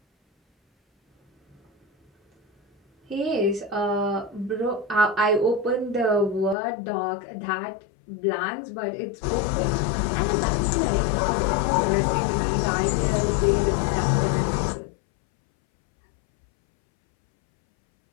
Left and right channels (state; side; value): drops out; right; at 6.6 s